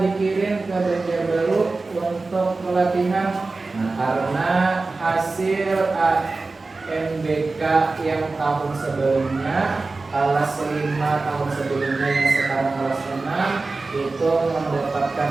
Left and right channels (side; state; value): left; quieter; 3.6 dB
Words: dikirim ke Banjarbaru untuk pelatihan? Nah, karena hasil AMBK yang tahun sebelumnya, kelas 5 tahun sebelumnya yang sekarang kelas 6 itu mendapatkan